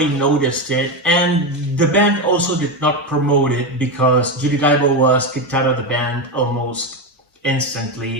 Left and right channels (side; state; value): both; normal; correlation 0.13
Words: noticed it. And the band also did not promote it because Judy Dyble was kicked out of the band almost